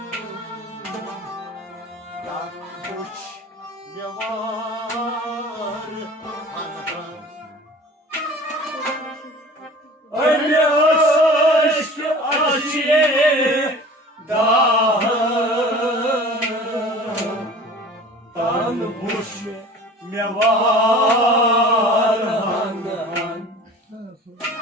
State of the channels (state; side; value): normal; both; correlation 0.42